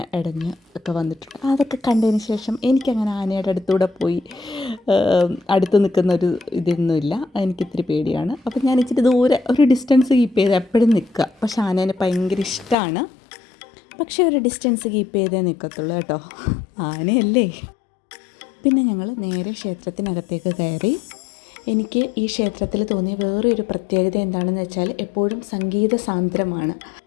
ഇടഞ്ഞ് ഒക്കെ വന്നിട്ടുണ്ട്. അതൊക്കെ കണ്ടതിന് ശേഷം എനിക്കങ്ങനെ ആനയുടെ അടുത്തൂടെ പോയി അടുത്ത് നിൽക്കുന്ന ഒരു ഇതൊന്നുമില്ല. എനിക്കിത്തിരി പേടിയാണ്. അപ്പം ഞാൻ ഇച്ചിരി ദൂരെ ഒരു ഡിസ്റ്റൻസ് കീപ്പ് ചെയ്ത് എപ്പോഴും നിൽക്കുക. പക്ഷെ ആനേനെ ഭയങ്കര ഇഷ്ടമാണ്. പക്ഷേ ഒരു ഡിസ്റ്റൻസ് കീപ്പ് ചെയ്തേ നിൽക്കത്തുള്ളൂ കേട്ടോ, ആനയല്ലേ. പിന്നെ ഞങ്ങൾ നേരെ ക്ഷേത്രത്തിനകത്തേക്ക് കയറി. എനിക്ക് ഈ ക്ഷേത്രത്തിൽ തോന്നിയ വേറൊരു പ്രത്യേകത എന്താണെന്ന് വെച്ചാൽ എപ്പോഴും സംഗീത സാന്ദ്രമാണ്.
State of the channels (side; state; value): right; drops out; at 12.8 s